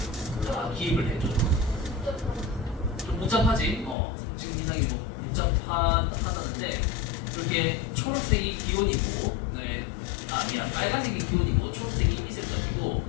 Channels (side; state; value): right; drops out; at 4.0 s